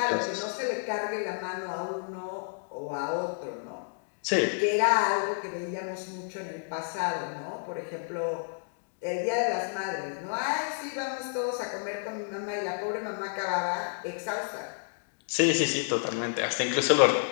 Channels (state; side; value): silent; right; digital silence